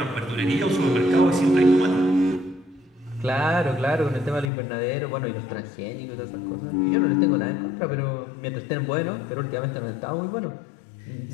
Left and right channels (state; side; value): drops out; right; at 4.5 s